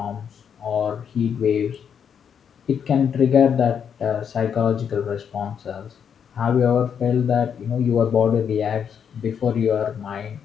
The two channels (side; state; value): right; quieter; 7.6 dB